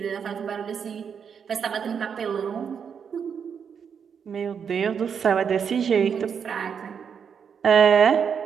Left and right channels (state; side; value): quieter; left; 7.1 dB